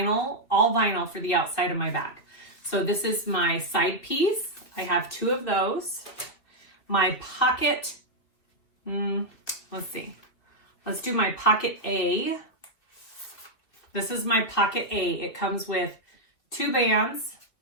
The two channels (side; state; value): right; late; 2.8 ms